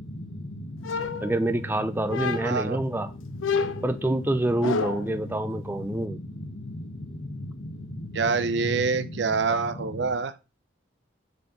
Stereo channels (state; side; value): normal; both; correlation 0.40